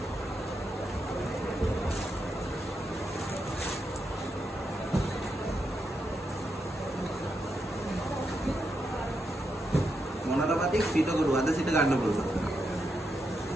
මොනරපතික් පිටකරු අද සිට ගන්න පුළුවන්.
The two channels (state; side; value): normal; both; correlation 0.84